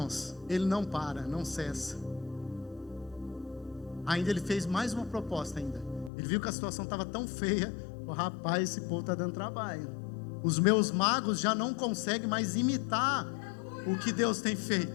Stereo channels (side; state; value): right; drops out; at 6.1 s